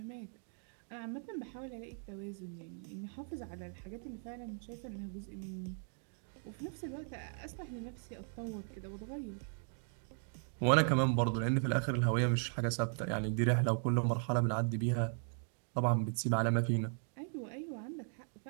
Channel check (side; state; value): left; silent; 53 dB below the other